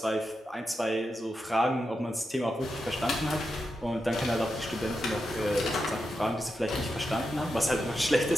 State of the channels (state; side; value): normal; both; correlation 0.88